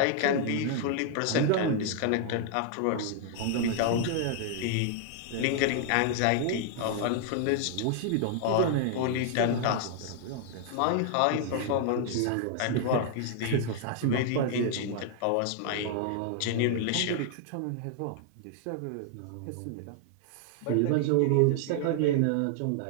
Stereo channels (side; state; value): both; different; correlation 0.00